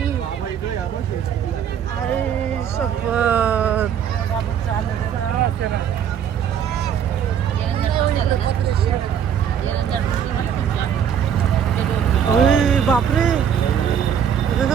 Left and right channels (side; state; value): left; quieter; 8.5 dB